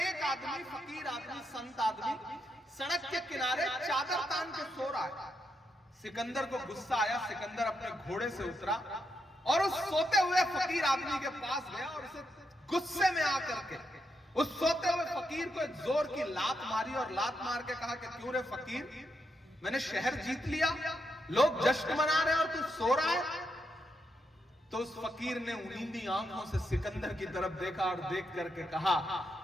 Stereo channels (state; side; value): normal; both; correlation 0.82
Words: आदमी, फकीर आदमी, संत आदमी सड़क के किनारे चादर तान के सो रहा है। सिकंदर को गुस्सा आया, सिकंदर अपने घोड़े से उतरा और उस सोते हुए फकीर आदमी के पास गया और उसे गुस्से में आकर के उस सोते हुए फकीर को एक जोर की लात मारी और लात मार के कहा कि क्यों रे फकीर, मैंने शहर जीत लिया, लोग जश्न मना रहे हैं और तू सो रहा है। तो उस फकीर ने नींदी आंखों से सिकंदर की तरफ देखा और देख करके कहा